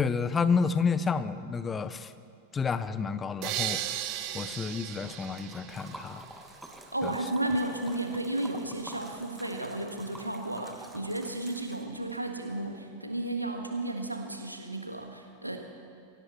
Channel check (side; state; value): both; normal; correlation 0.15